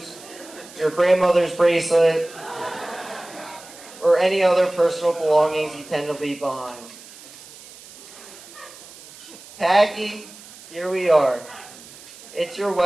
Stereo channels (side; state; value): right; noise; hiss, 19 dB below the sound